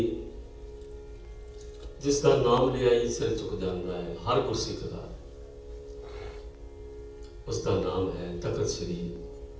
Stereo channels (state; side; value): identical; both; correlation 1.00